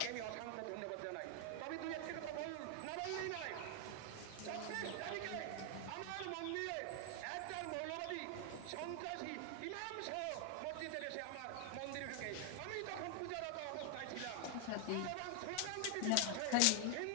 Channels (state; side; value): different; both; correlation 0.00